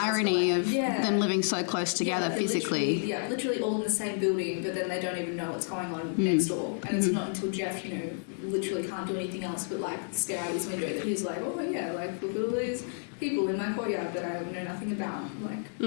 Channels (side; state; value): right; silent; digital silence